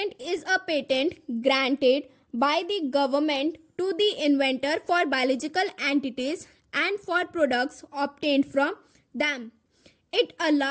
is a patent granted by the government to the inventor for biological entities and for products obtained from them. It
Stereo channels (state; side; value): identical; both; correlation 1.00